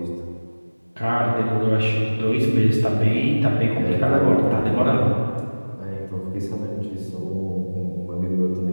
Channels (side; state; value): both; inverted; correlation -1.00